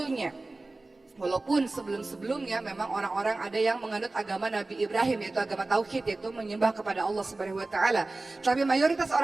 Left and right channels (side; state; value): left; quieter; 3.1 dB